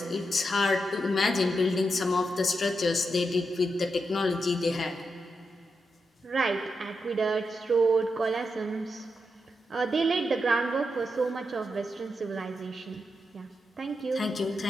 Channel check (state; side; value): normal; both; correlation 0.85